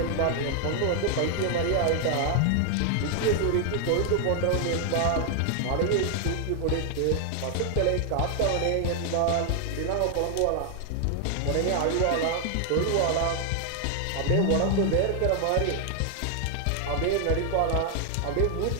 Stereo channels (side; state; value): both; different; correlation 0.00